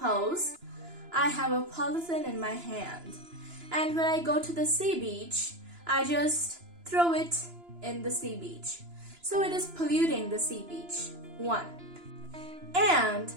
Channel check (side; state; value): left; late; 2.9 ms